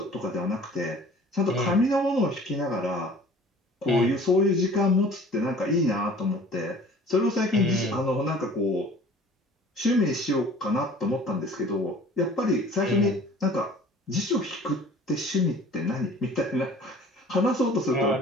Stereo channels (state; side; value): normal; both; correlation 0.48